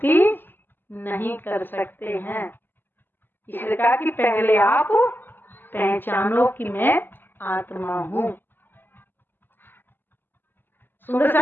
नहीं कर सकते हैं। इसलिए कहा कि पहले आप पहचानो कि मैं आत्मा हूँ। सुंदर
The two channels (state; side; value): late; right; 0.095 ms